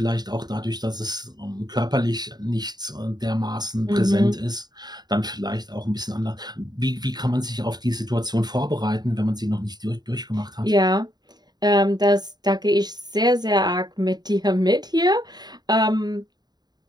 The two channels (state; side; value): late; left; 0.20 ms